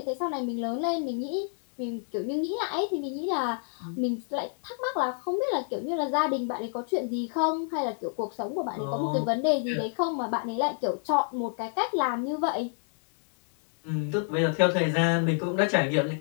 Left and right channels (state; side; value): silent; right; 59 dB below the other